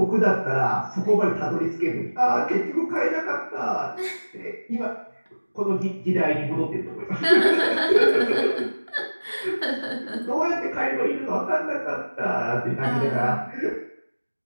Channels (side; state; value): both; inverted; correlation -1.00